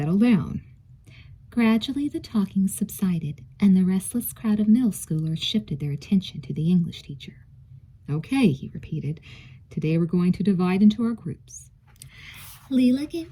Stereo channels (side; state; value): both; identical; correlation 1.00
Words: down. Gradually the talking subsided, and the restless crowd of middle schoolers shifted their attention to the English teacher. Okay, he repeated, today we're going to divide into our groups. Leela gave